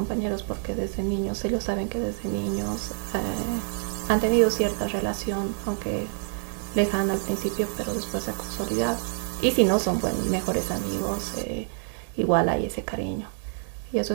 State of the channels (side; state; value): left; silent; 60 dB below the other